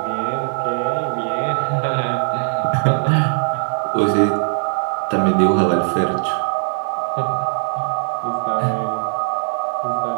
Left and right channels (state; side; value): silent; left; 66 dB below the other